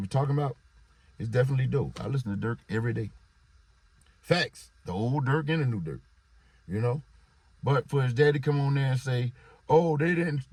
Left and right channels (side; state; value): both; identical; correlation 1.00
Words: talking about is definitely dope. I listen to Durk every day. Facts, the old Durk and the new Durk, you know? But for his dad to come on there and say, oh, they didn't,